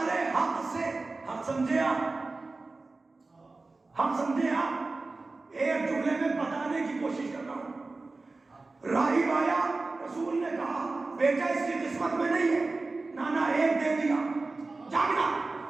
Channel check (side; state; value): left; quieter; 3.5 dB